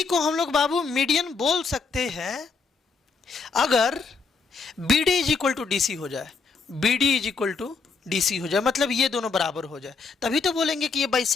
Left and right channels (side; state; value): right; quieter; 4.5 dB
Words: को हम लोग बाबू मीडियन बोल सकते हैं अगर B D is equal to D C हो जाए, B D is equal to D C हो जाए, मतलब ये दोनों बराबर हो जाए, तभी तो बोलेंगे कि ये